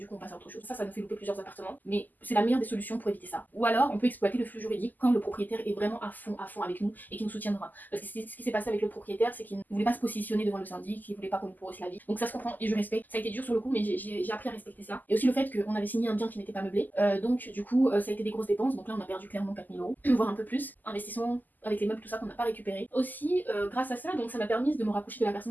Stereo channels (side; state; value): right; late; 0.085 ms